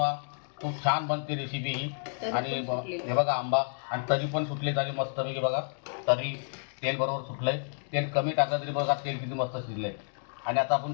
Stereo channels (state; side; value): silent; right; digital silence